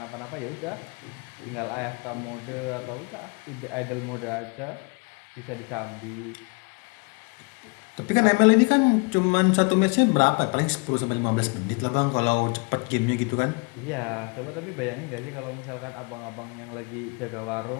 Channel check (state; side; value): quieter; right; 31.7 dB